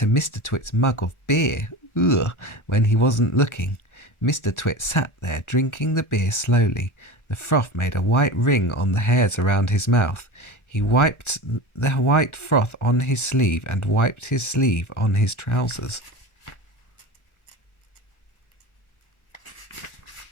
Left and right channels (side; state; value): right; late; 1.3 ms